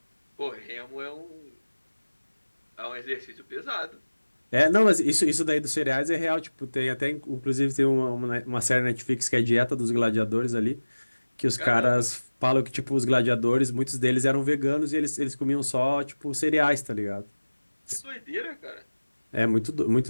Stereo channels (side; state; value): both; inverted; correlation -1.00